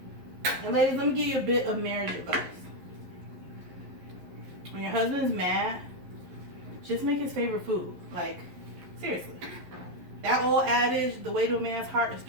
And ladies, let me give you a bit of marriage advice. When your husband's mad, just make his favorite food. Like, seriously. That old adage, the way to a man's heart is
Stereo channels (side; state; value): left; late; 11 ms